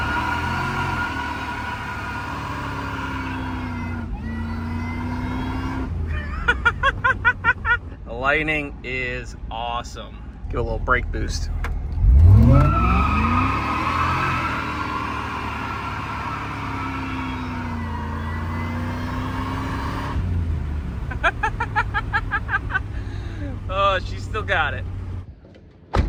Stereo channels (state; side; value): identical; both; correlation 1.00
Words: The Lightning is awesome. Give it a little brake boost. Oh, she still got it.